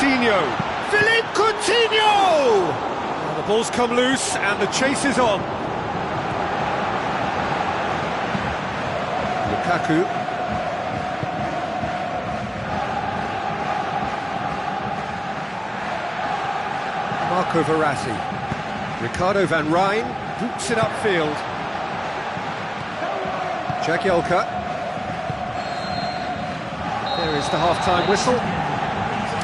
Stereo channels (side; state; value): both; identical; correlation 1.00